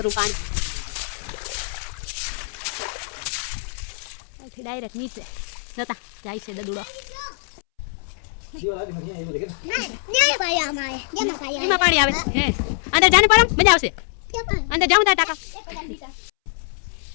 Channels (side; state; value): right; silent; 63 dB below the other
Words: પાણી અહીંથી ડાયરેક્ટ નીચે જોતા જાય છે દડુડો. એમાં પાણી આવે હે. અંદર જાને પરમ મજા આવશે. અંદર જાઉં તા ટાકા